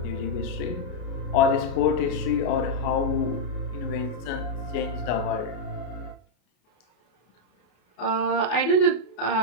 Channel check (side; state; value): right; late; 33 ms